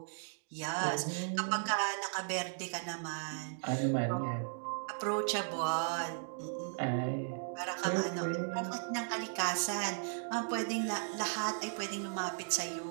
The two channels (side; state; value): left; silent; digital silence